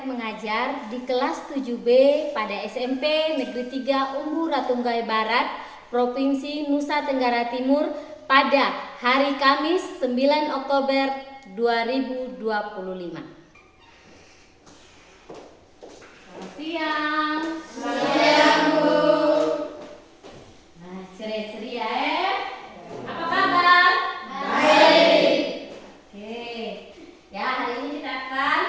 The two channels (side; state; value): both; identical; correlation 1.00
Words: mengajar di kelas 7B pada SMP Negeri 3 Umbu Ratunggai Barat, Provinsi Nusa Tenggara Timur pada hari Kamis 9 Oktober 2025. Selamat siang. Siang, Bu. Nah, ceria-ceria Apa kabar? Baik. Oke. Ya, hari ini kita akan